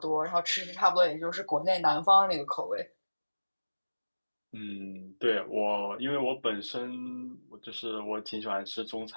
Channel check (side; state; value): both; inverted; correlation -1.00